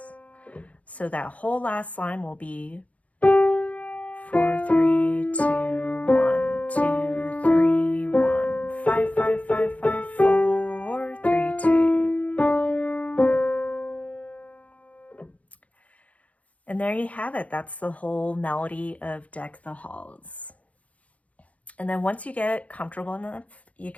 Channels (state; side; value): late; right; 0.067 ms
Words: So that whole last line will be 4, 3, 2, 1, 2, 3, 1, 5, 5, 5, 5, 4, 3, 2. And there you have it. That's the whole melody of Deck the Halls. And then once you get comfortable enough, you